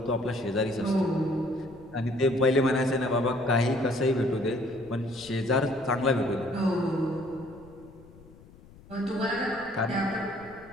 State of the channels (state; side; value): noise; left; rumble, 22 dB below the sound